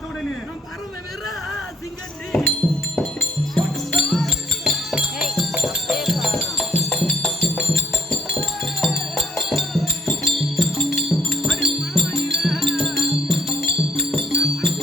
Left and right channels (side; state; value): both; normal; correlation 0.67